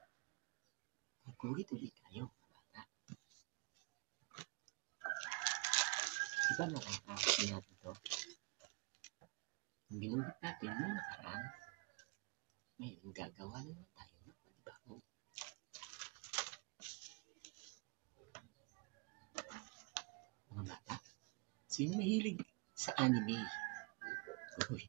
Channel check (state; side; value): quieter; left; 31.6 dB